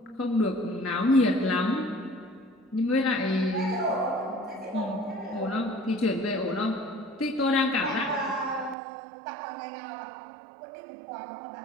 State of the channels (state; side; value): drops out; left; at 8.8 s